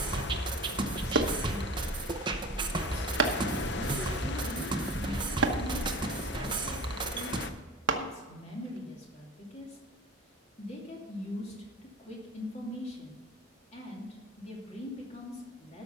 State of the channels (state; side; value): normal; both; correlation 0.35